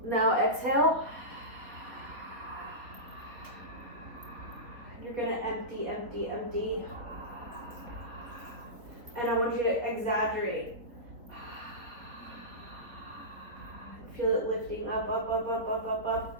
Now exhale. You're gonna empty, empty, empty. And I want you to exaggerate. Feel it lifting up, up, up, up, up, up,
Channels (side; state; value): left; late; 4.0 ms